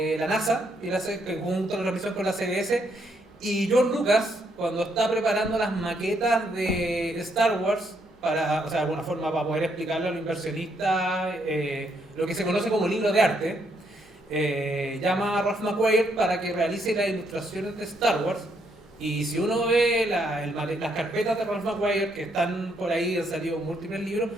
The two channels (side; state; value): both; normal; correlation 0.74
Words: la NASA, y él hace junto a la revisión con la CBS. Y George Lucas, cuando está preparando las maquetas de Star Wars, o sea, de alguna forma para poder explicarle a los inversionistas lo que se conoce como libro de arte, llama a Ralph McQuarrie para que realice las ilustraciones de Star Wars. Y si uno ve las carpetas de Ralph McQuarrie, que están por ahí, han salido múltiples libros,